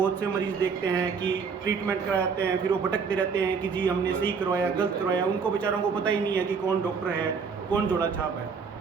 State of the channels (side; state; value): left; quieter; 5.7 dB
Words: से मरीज़ देखते हैं कि ट्रीटमेंट कराते हैं, फिर वो भटकते रहते हैं कि जी हमने सही करवाया गलत करवाया। उनको बेचारों को पता ही नहीं है कि कौन डॉक्टर है कौन जोड़ा छाप है।